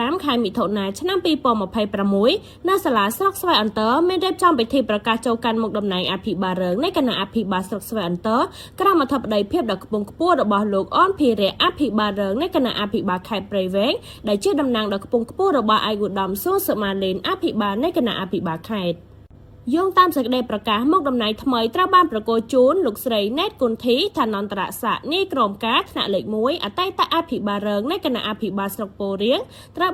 ខែមិថុនាឆ្នាំ2026នៅសាលាស្រុកស្វាយអន្តរមានរៀបចំពិធីប្រកាសចូលកាន់មុខតំណែងអភិបាលរងនៃគណៈអភិបាលស្រុកស្វាយអន្តរក្រមអធិបតីភាពដ៏ខ្ពង់ខ្ពស់របស់លោកអនភិរៈអភិបាលរងនៃគណៈអភិបាលខេត្តព្រៃវែងដែលជាតំណាងដ៏ខ្ពង់ខ្ពស់របស់ឯកឧត្តមសួងសុមាលេនអភិបាលនៃគណៈអភិបាលខេត្តយោងតាមសេចក្តីប្រកាសមកតំណែងថ្មីត្រូវបានប្រកល់ជូនលោកស្រីណែតគុន្ធីឋានន្តរស័ក្តិនាយក្រមការថ្នាក់លេខ1អតីតអភិបាលរងនៃគណៈអភិបាលស្រុកពោធិ៍រៀងត្រូវ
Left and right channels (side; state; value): both; identical; correlation 1.00